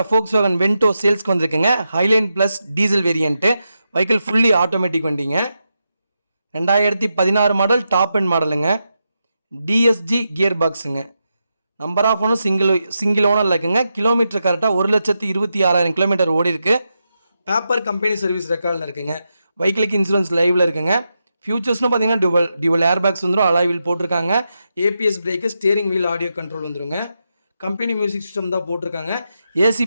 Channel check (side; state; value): both; inverted; correlation -0.87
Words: Volkswagen Vento சேல்ஸ்க்கு வந்திருக்குங்க. Highline plus diesel variant. Vehicle fully automatic வண்டிங்க. 2016 மாடல், டாப் அண்ட் மாடலுங்க. டிஎஸ்ஜி கியர் பாக்ஸுங்க. Number of owner single owner இருக்குங்க. கிலோமீட்டர் கரெக்டாக 1,26,000 கிலோமீட்டர் ஓடி இருக்கு. பேப்பர் கம்பெனி சர்வீஸ் ரெக்கார்டில் இருக்குங்க. வெஹிக்கிளுக்கு இன்சூரன்ஸ் லைவில் இருக்குங்க. ஃபியூச்சர்ஸ்னு பார்த்தீங்கன்னா டியூவல் ஏர் பேக்ஸ் வந்துடும், அலாய் வீல் போட்டிருக்காங்க. ABS brake, steering wheel, audio control வந்துருங்க. கம்பெனி மியூசிக் சிஸ்டம் தான் போட்டிருக்காங்க. ஏசி